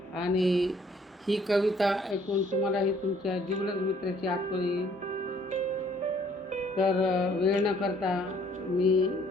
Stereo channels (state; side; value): normal; both; correlation 0.61